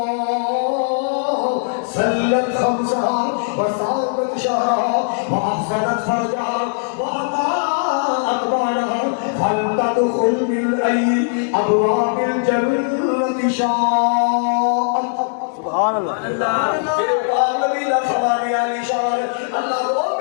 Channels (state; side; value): silent; right; digital silence